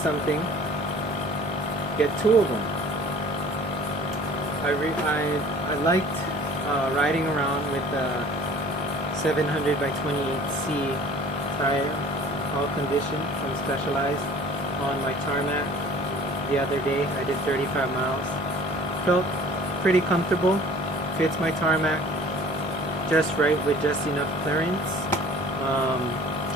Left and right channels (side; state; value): both; normal; correlation 0.48